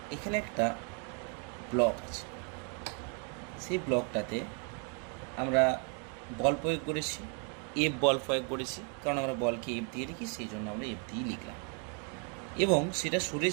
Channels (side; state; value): left; quieter; 39.5 dB